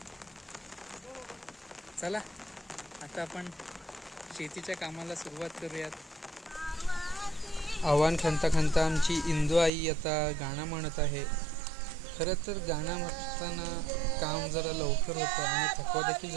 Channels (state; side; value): drops out; left; at 9.7 s